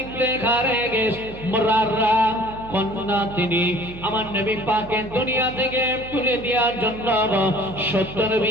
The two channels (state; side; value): noise; right; hum, 15 dB below the sound